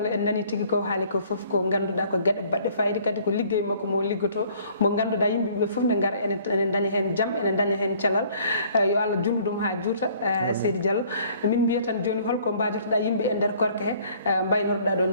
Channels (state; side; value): inverted; both; correlation -0.57